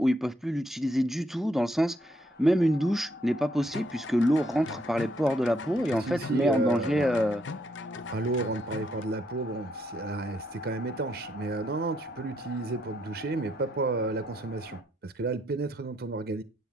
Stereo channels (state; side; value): normal; both; correlation 0.74